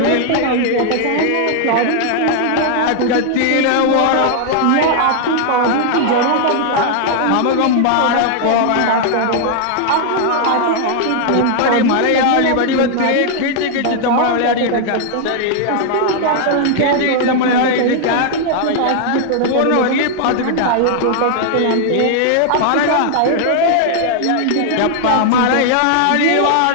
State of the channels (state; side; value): different; both; correlation 0.00